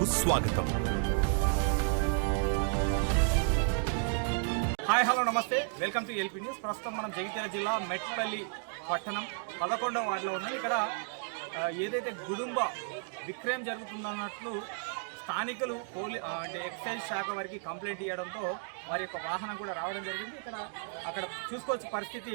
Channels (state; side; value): silent; left; 56 dB below the other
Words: స్వాగతం. హాయ్ హలో నమస్తే, వెల్కమ్ టు ఎల్పీ న్యూస్. ప్రస్తుతం మనం జగిత్యాల జిల్లా మెట్పల్లి పట్టణం 11వ వార్డులో ఉన్నాం. ఇక్కడ ఏదైతే గుడుంబ విక్రయం జరుగుతుందన్నట్లు స్థానికులు అంటే ఎక్సైజ్ శాఖ వారికి కంప్లైంట్ ఇవ్వడంతో వారి యొక్క వాహనం కూడా రావడం జరిగింది. అక్కడ చూసుకోవచ్చు పరిస్థితి.